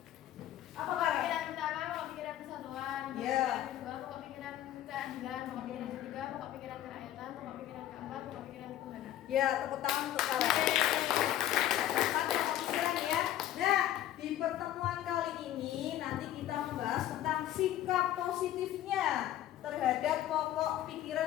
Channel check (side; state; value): right; quieter; 12.7 dB